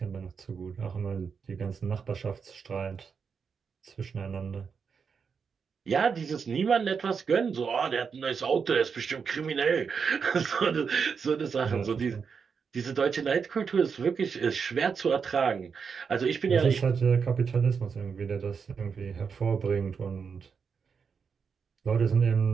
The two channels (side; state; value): left; quieter; 6.0 dB